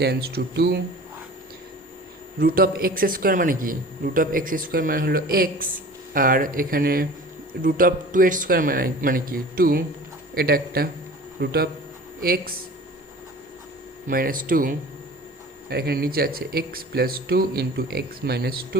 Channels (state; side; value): normal; both; correlation 0.41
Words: to 2, root of X square মানে কি, রুট অফ এক্স স্কোয়ার মানে হলো এক্স, আর এখানে রুট অফ 2 এর স্কোয়ার মানে কি 2, এটা একটা রুট অফ এক্স মাইনাস 2, আর এখানে নিচে আছে X plus 2 into X minus